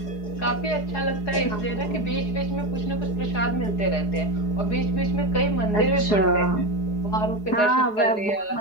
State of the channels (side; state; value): right; late; 4.8 ms